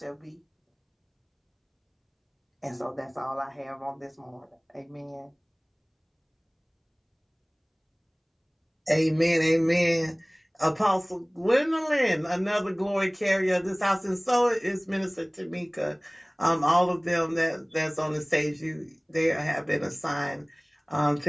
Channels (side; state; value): both; identical; correlation 1.00